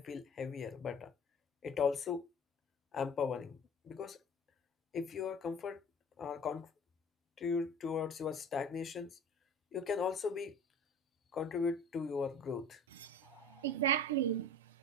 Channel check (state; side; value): normal; both; correlation 0.42